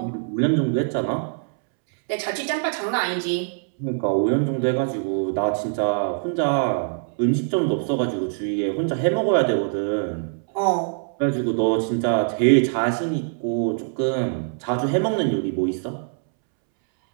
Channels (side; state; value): left; silent; 63 dB below the other